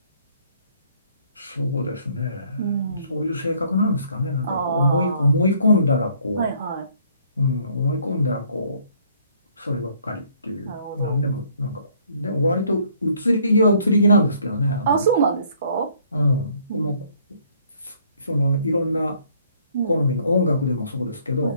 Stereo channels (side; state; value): both; inverted; correlation -0.62